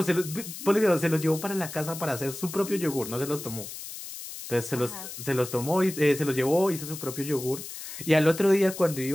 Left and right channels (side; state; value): left; noise; hiss, 10 dB below the sound